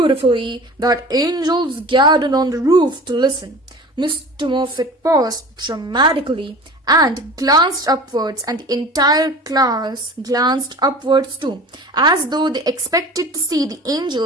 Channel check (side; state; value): both; normal; correlation 0.39